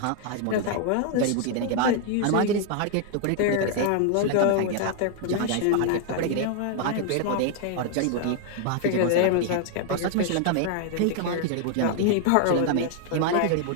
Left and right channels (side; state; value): both; different; correlation 0.00